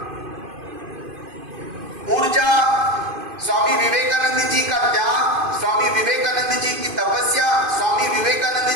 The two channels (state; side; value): late; left; 2.5 ms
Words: ऊर्जा, स्वामी विवेकानंद जी का त्याग, स्वामी विवेकानंद जी की तपस्या, स्वामी